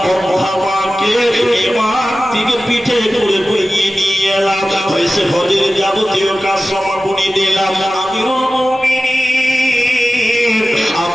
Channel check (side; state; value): both; normal; correlation 0.95